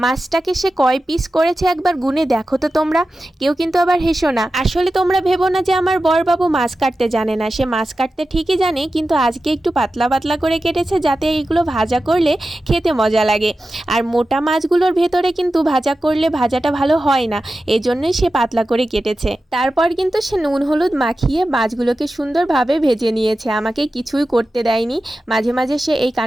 মাছটাকে সে কয় পিস করেছে একবার গুনে দেখো তো তোমরা। কেউ কিন্তু আবার হেসো না। আসলে তোমরা ভেবো না যে আমার বড়বাবু মাছ কাটতে জানে না, সে মাছ কাটতে ঠিকই জানে, কিন্তু আজকে একটু পাতলা পাতলা করে কেটেছে যাতে এইগুলো ভাজা করলে খেতে মজা লাগে। আর মোটা মাছগুলোর ভেতরে কিন্তু ভাজা করলে ভাজাটা ভালো হয় না, এই জন্যই সে পাতলা করে কেটেছে। তারপর কিন্তু সে নুন হলুদ মাখিয়ে মাছগুলোকে সুন্দরভাবে ভেজে নিয়েছে, আমাকে কিছুই করতে দেয়নি। মাঝে মাঝে সে এই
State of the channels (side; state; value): both; normal; correlation 0.93